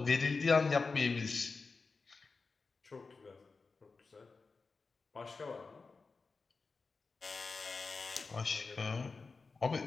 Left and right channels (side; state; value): right; quieter; 4.3 dB